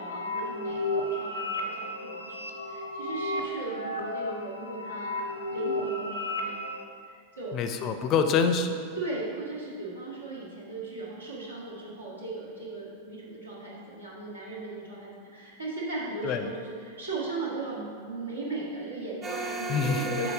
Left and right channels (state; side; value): normal; both; correlation -0.02